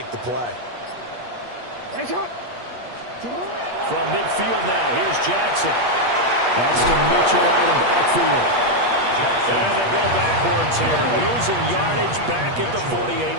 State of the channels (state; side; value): late; left; 8.4 ms